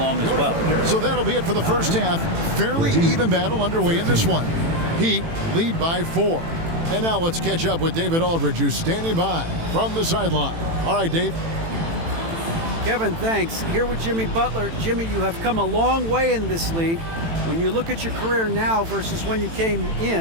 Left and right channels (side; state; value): left; late; 18 ms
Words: as well. So that'll be it for the first half. Fairly even battle underway in this one. Heat lead by 4. And now let's catch up with David Aldridge, who's standing by from the sideline. All right, Dave. Kevin, thanks. Here with Jimmy Butler. Jimmy, you have come a long way in this league. When you look at your career now versus when you came